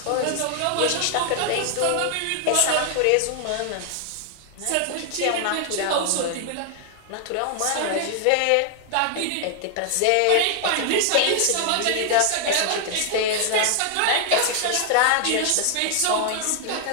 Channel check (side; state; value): both; different; correlation 0.00